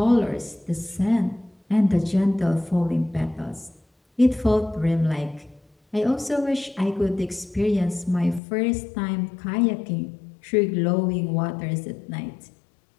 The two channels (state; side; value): drops out; right; at 8.4 s